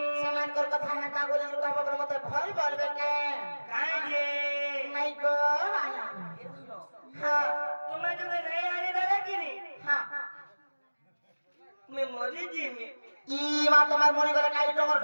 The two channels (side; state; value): both; inverted; correlation -1.00